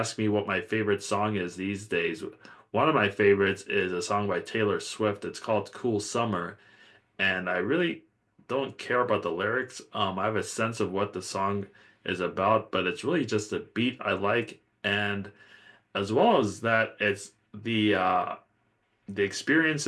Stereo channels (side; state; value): both; identical; correlation 1.00